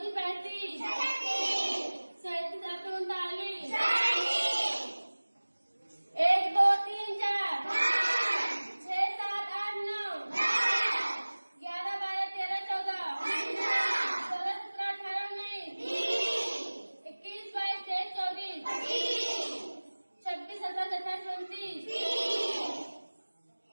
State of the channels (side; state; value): both; inverted; correlation -1.00